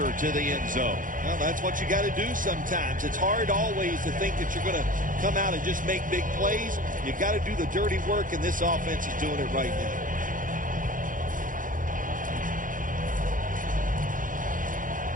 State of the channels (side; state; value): left; late; 0.39 ms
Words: to the end zone. Well, that's what you got to do sometimes. It's hard always to think that you're going to come out and just make big plays. You got to do the dirty work, and this offense is doing it right now.